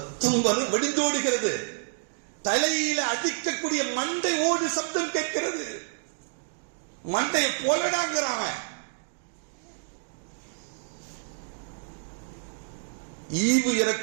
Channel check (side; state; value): left; silent; digital silence